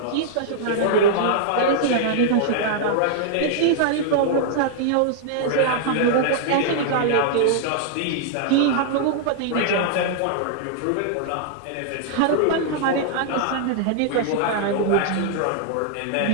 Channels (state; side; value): different; both; correlation -0.01